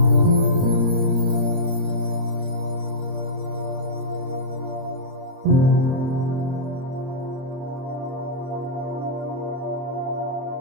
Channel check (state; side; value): late; left; 30 ms